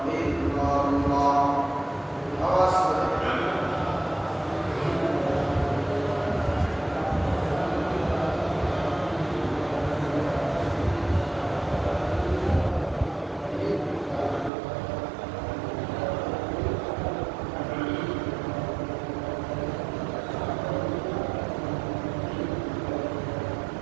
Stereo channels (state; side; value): drops out; left; at 14.5 s